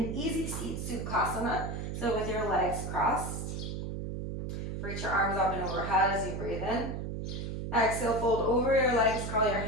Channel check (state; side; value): noise; right; hum, 5 dB below the sound